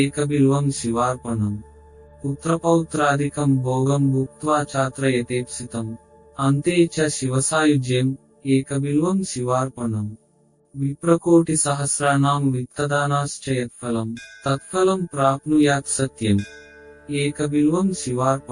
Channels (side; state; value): both; identical; correlation 1.00